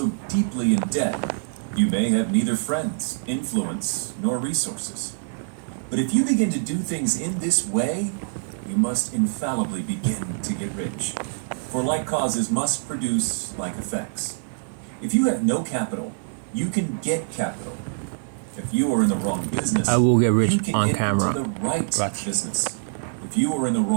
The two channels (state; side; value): silent; left; digital silence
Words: deeply in debt you may have neither friends, influence, nor resources. But if you begin to do things in this way, you must infallibly begin to get rich. For like causes must produce like effects. If you have no capital, you can get capital. If you are in the wrong business, I will get rich you can on get camera. into the right Watch. business. If you are in the